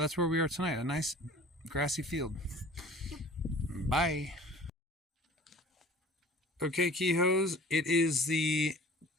where we are tonight, a nice grassy field. Bye. Okay, Keyhoes, it is the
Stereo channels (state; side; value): normal; both; correlation 0.46